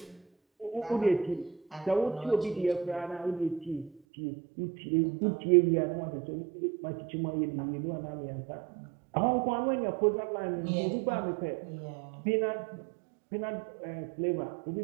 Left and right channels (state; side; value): drops out; left; at 4.0 s